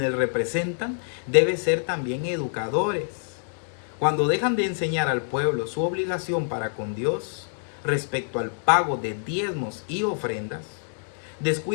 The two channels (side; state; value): right; silent; digital silence